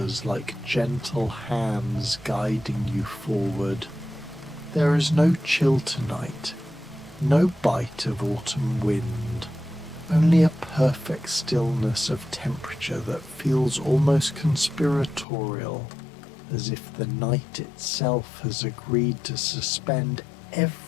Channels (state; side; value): drops out; right; at 15.2 s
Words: like gentle hands guiding you forward. There is no chill tonight, no bite of autumn wind, only a perfect stillness of temperature that feels almost conspiratorial, as if the night itself has agreed to suspend